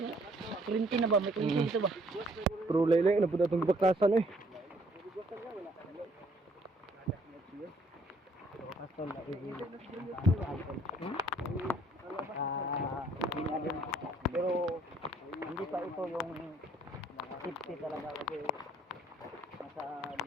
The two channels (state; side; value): normal; both; correlation 0.63